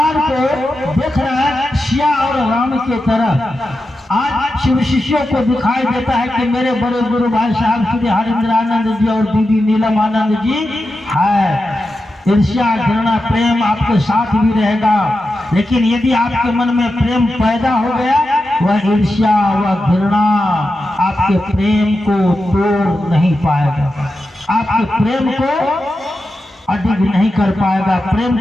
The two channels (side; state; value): both; normal; correlation 0.90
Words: को देख रहा है सिया और राम के तरह। आज शिव शिष्यों को दिखाई देता है कि मेरे बड़े गुरु भाई साहब श्री हरिंद्रानंद जी और दीदी नीलम आनंद जी है। ईर्ष्या, घृणा, प्रेम आपके साथ भी रहेगा, लेकिन यदि आपके मन में प्रेम पैदा हो गया, वह ईर्ष्या, वह घृणा आपके प्रेम को तोड़ नहीं पाएगा, आपके प्रेम को अडिग नहीं कर पाएगा, प्रेम